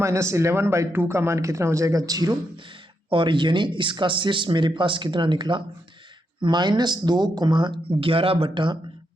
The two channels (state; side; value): normal; both; correlation 0.81